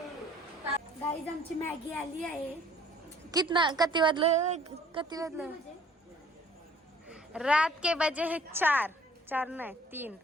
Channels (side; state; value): both; normal; correlation 0.56